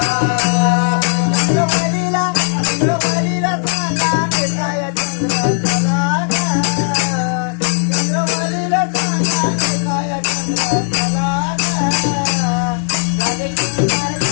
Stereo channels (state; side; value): silent; right; 69 dB below the other